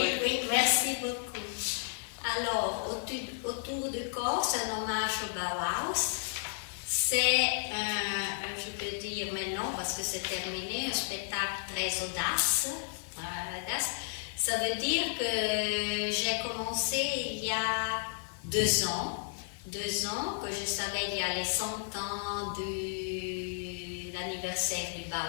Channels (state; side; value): silent; right; digital silence